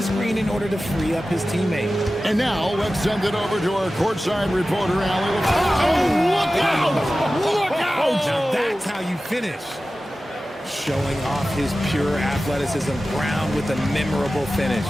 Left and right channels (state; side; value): normal; both; correlation 0.95